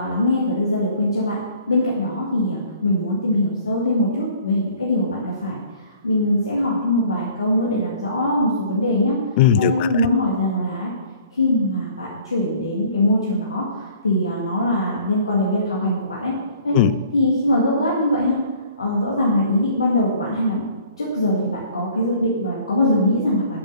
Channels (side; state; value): both; inverted; correlation -0.53